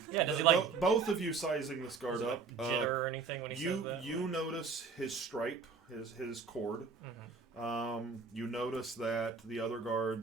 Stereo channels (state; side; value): quieter; left; 4.9 dB